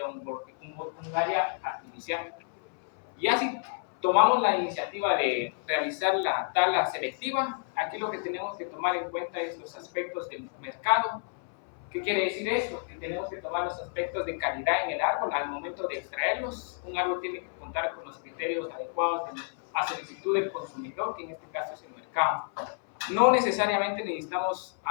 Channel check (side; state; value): right; silent; 58 dB below the other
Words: un área artificial. Y así tomamos la iniciativa de realizar la tala selectiva. Aquí lo que tenemos que tomar en cuenta es los aspectos del mercado. ¿Qué quiere decir esto? Que tenemos que tomar los aspectos de calidad en el árbol al momento de extraerlos. Un árbol tiene que contar con los criterios adecuados a solicitud del consumidor, que en este caso es el mercado. No necesariamente necesitamos